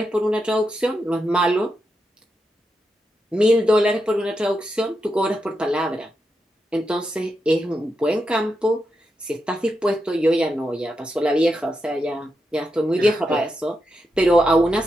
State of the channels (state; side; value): normal; both; correlation 0.86